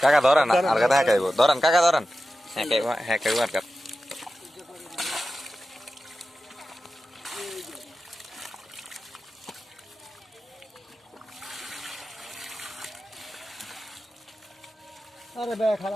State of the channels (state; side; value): normal; both; correlation 0.93